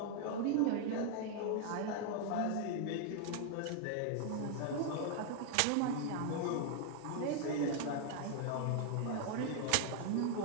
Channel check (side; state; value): both; different; correlation 0.00